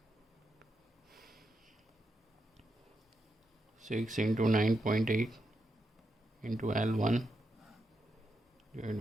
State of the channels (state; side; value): normal; both; correlation 0.84